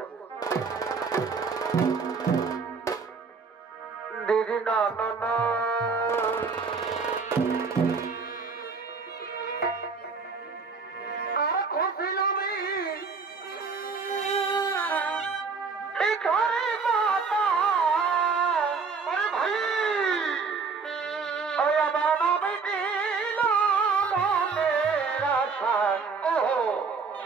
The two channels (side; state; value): left; quieter; 5.0 dB